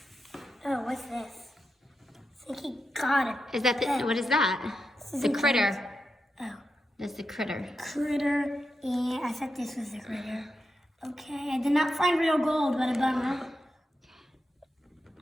Oh, what's this? I think he got it. Is that what is that? This is The a critter. Oh, That's the critter. critter. And I thought this was the critter. Okay, I did not find real gold, but a bummer.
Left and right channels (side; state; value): both; normal; correlation 0.87